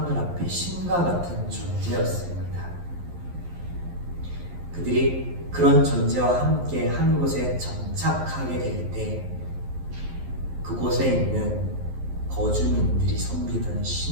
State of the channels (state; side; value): late; left; 11 ms